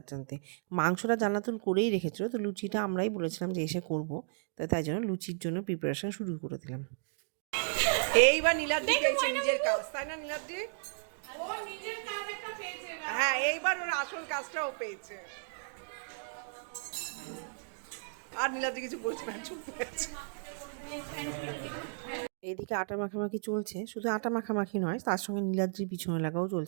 জানতে। মাংসটা জান্নাতুল করেই রেখেছিল, তো লুচিটা আমরাই বলেছিলাম যে এসে করবো, তাই জন্য লুচির জন্য প্রিপারেশন শুরু করে দিলাম। এইবার নীলাদ্রি পেয়েছে নিজের কাজ, তাই না নীলাদ্রি? হ্যাঁ, এইবার ওর আসল কাজটাও পেয়েছে। আর নীলাদ্রি কিছু বলছে না, চুপ করে আছে। এদিকে আটা মাখামাখি চলছে, শুধু আটা মাখামাখি নয়, তার সঙ্গে নীলাদ্রির পিছনে লাগাও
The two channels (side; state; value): left; silent; digital silence